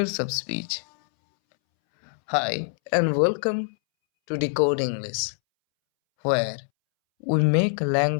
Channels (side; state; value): right; silent; 62 dB below the other